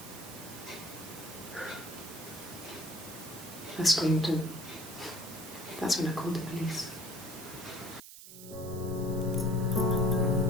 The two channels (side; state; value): right; noise; hiss, 14 dB below the sound